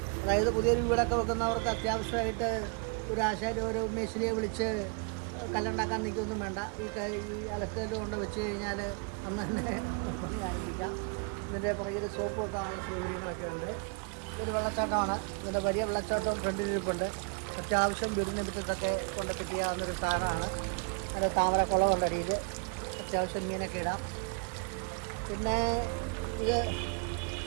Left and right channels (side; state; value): left; quieter; 36.5 dB